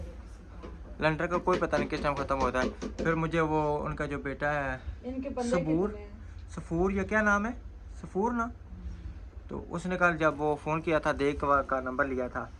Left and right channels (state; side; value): identical; both; correlation 1.00